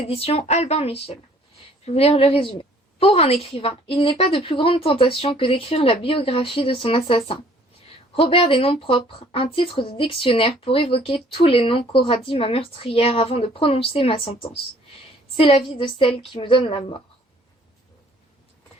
Albin Michel. Je vais vous lire le résumé. Pour un écrivain, il n'est pas de plus grande tentation que d'écrire la biographie de son assassin. Robert des noms propres, un titre de dictionnaire pour évoquer tous les noms qu'aura dit ma meurtrière avant de prononcer ma sentence. C'est la vie de celle qui me donne la mort.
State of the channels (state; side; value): normal; both; correlation 0.57